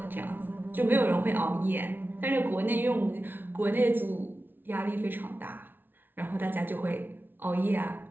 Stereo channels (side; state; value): left; late; 0.097 ms